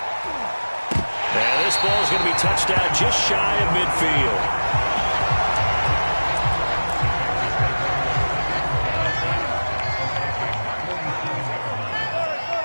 And this ball is going to be touched out just shy of midfield.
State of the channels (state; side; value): inverted; both; correlation -1.00